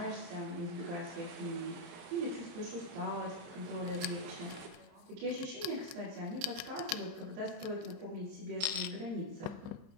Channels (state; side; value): late; left; 30 ms